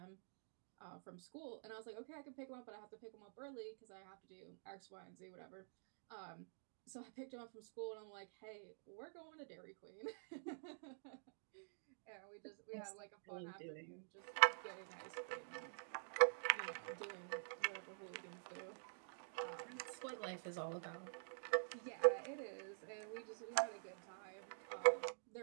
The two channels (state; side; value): silent; left; digital silence